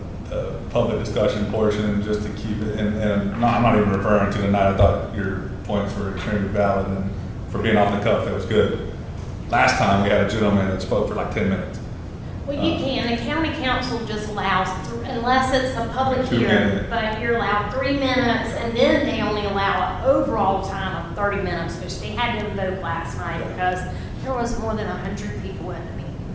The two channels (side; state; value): both; identical; correlation 1.00